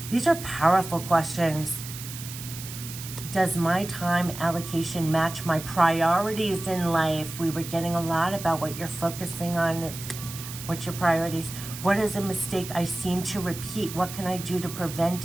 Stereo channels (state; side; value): noise; right; hiss, 11 dB below the sound